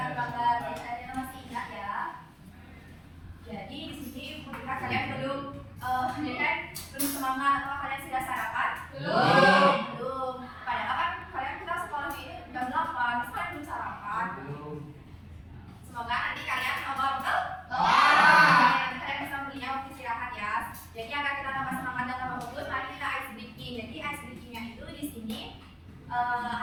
Jadi di sini ketika kalian belum semangat atau kalian sudah sarapan? Belum. Padahal kan kalian kita sekolah ini jam 8, terus kalian belum sarapan. Semoga nanti kalian betul? Nanti kalian bisa belinya waktu istirahat ya. Jadi agar kita tambah semangat dan tambah bagus, mari kita ice breaking. Jadi ice breakingnya itu di sini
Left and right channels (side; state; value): both; identical; correlation 1.00